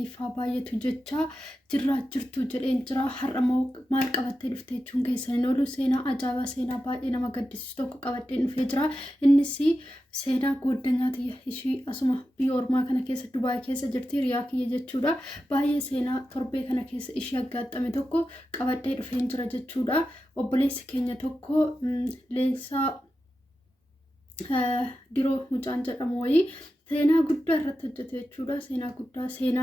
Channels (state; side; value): normal; both; correlation 0.91